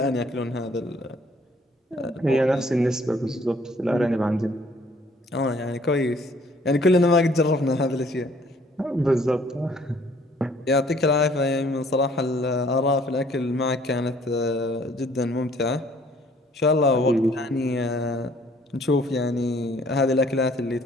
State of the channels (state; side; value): normal; both; correlation 0.59